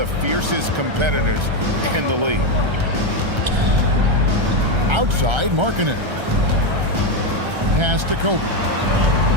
fiercest competitors in the league. Outside, Markkanen. Pass to Kobe.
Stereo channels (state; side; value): late; left; 1.3 ms